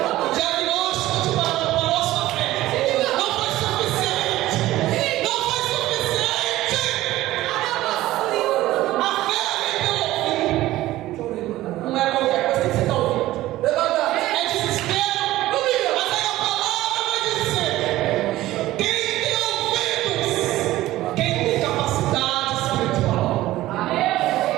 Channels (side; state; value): left; quieter; 16.0 dB